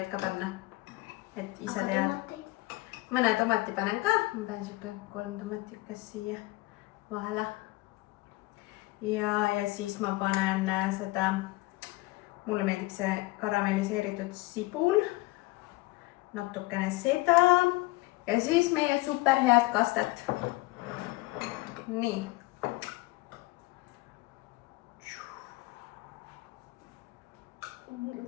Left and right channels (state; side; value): quieter; right; 21.5 dB